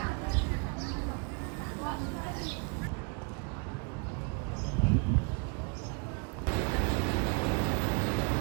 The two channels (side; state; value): left; quieter; 33.9 dB